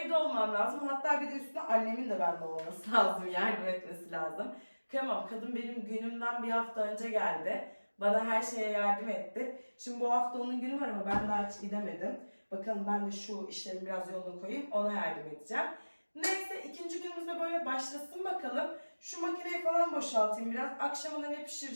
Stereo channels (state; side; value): inverted; both; correlation -1.00